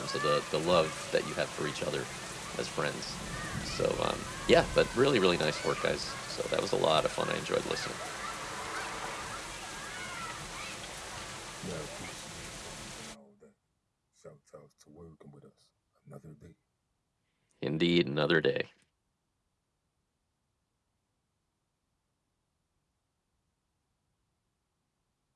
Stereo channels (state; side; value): identical; both; correlation 1.00